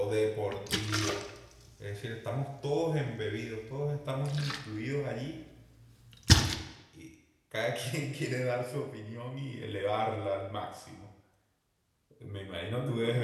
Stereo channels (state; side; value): identical; both; correlation 1.00